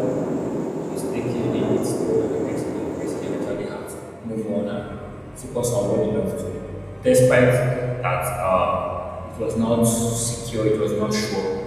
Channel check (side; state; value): both; identical; correlation 1.00